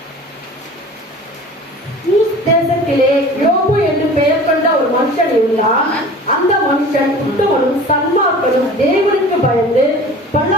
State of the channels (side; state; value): both; normal; correlation 0.41